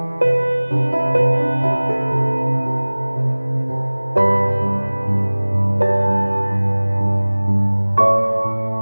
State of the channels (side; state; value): both; inverted; correlation -1.00